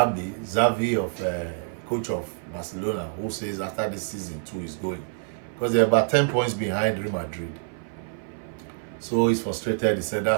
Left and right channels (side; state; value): left; silent; 56 dB below the other